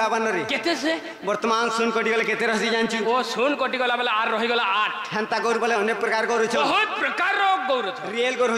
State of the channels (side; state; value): both; identical; correlation 1.00